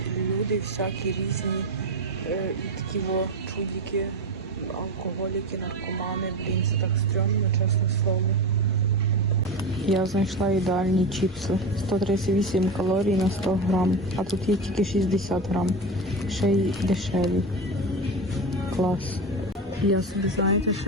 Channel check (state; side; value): normal; both; correlation 0.21